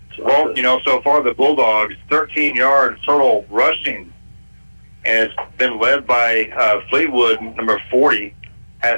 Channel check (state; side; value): inverted; both; correlation -1.00